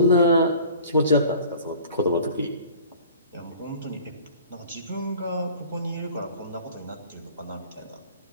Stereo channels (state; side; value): inverted; both; correlation -0.46